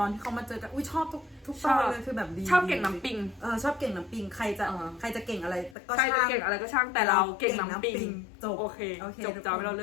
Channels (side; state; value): right; drops out; at 5.8 s